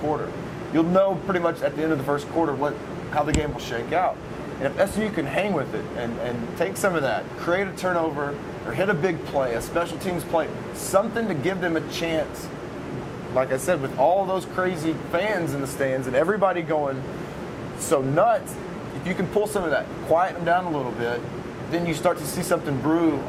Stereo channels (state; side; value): identical; both; correlation 1.00